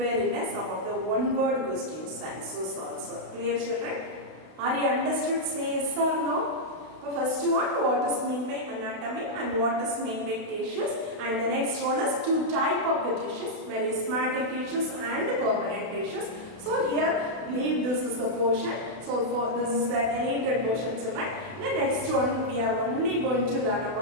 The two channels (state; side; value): late; left; 32 ms